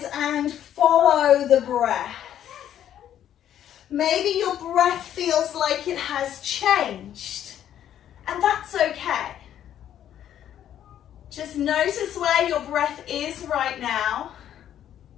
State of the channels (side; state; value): right; quieter; 10.7 dB